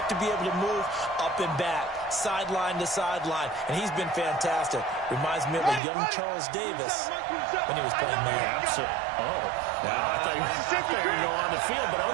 to be able to move up and back, sideline to sideline, and he's been fantastic. Reminds me of a young Charles Davis when he was playing man. Oh, wow, I thought you were going to go on the field, but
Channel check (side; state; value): left; drops out; at 5.8 s